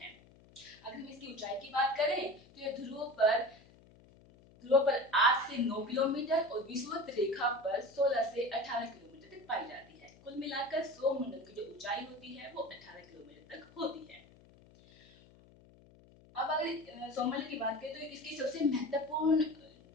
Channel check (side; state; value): left; noise; hum, 25 dB below the sound